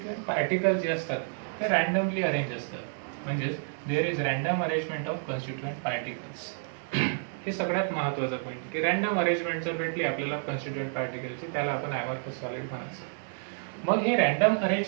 पार्टिकल जे असतात ते रॅन्डमली अरेंज असतात, म्हणजेच there is random arrangement of constituent particles. हे सगळ्यात महत्त्वाचं पॉईंट की रॅन्डम अरेंजमेंट जर भेटली आपल्याला कॉन्स्टिट्युएंट पार्टिकलची त्याला आपण ॲमॉर्फस सॉलिड म्हणायचं. मग हे रॅन्डम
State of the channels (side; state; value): left; silent; digital silence